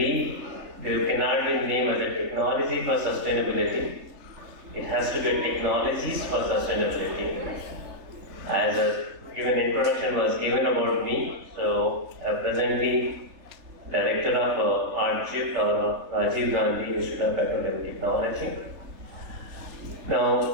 there cannot be named as a technology for sustainability. It has to be a technologies for sustainability. As a given introduction was given about me, so I'm presently Director of RGIPT or Rajiv Gandhi Institute of Petroleum Technology.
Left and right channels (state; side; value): late; left; 3.2 ms